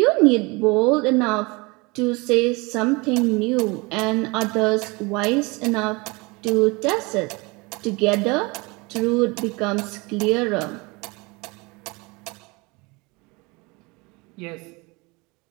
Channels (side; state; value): left; quieter; 26.4 dB